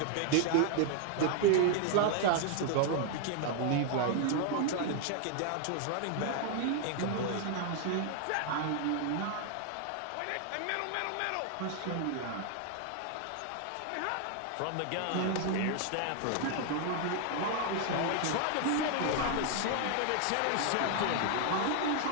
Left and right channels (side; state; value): both; different; correlation 0.00